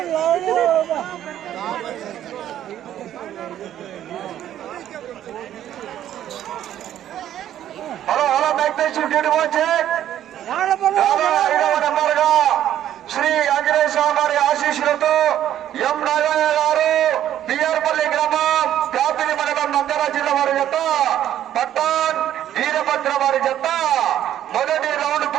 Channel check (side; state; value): left; quieter; 11.5 dB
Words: hello hello నెంబర్గా Shri Anjaneya స్వామి వారి ఆశీస్సులతో ఎం నాగయ్య గారు బిఆర్పల్లి గ్రామం కాపిలి మండలం నంద్యాల జిల్లా వారి జత పట్టాన్ వీరభద్ర వారి జత మొదటి రౌండ్